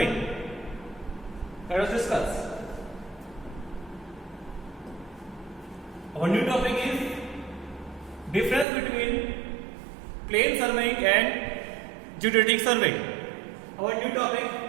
Let us discuss. Our new topic is difference between plane surveying and geodetic surveying. Our new topic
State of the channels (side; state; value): left; drops out; at 8.7 s